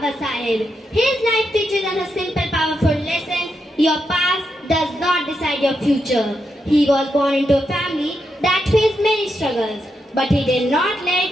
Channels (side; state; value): both; normal; correlation 0.84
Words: Sahib. His life teaches us a simple, powerful lesson: your past does not decide your future. He was born into a family that faced many struggles, but he did not